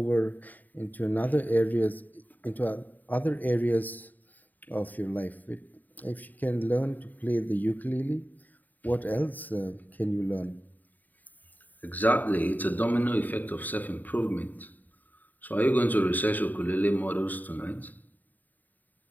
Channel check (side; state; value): right; late; 0.085 ms